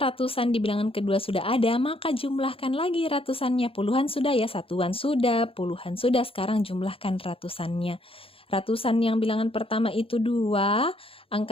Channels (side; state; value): right; late; 0.27 ms